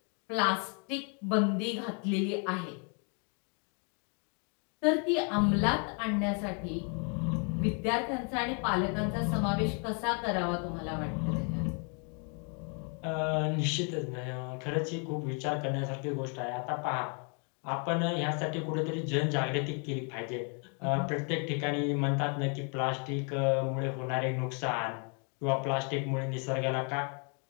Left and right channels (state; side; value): quieter; right; 38.7 dB